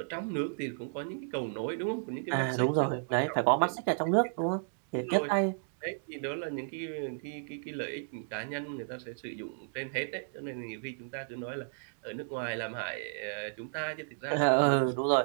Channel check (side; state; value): left; silent; digital silence